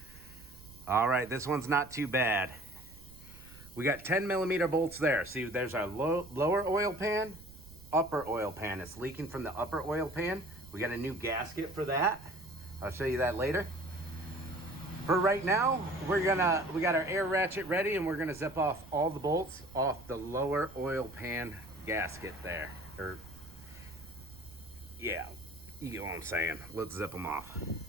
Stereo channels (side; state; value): right; noise; rumble, 19 dB below the sound